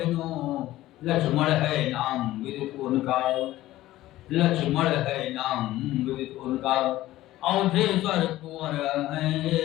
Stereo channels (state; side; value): quieter; right; 15.6 dB